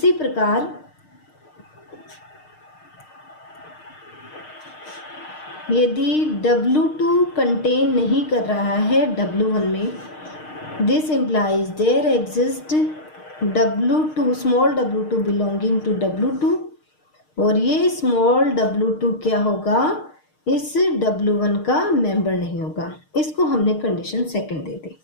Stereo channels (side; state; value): right; late; 6.5 ms